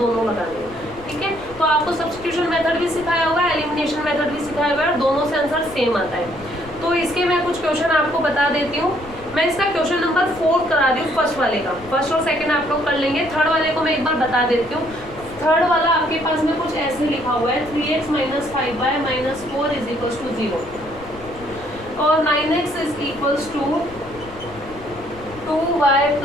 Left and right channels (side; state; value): left; noise; rumble, 19 dB below the sound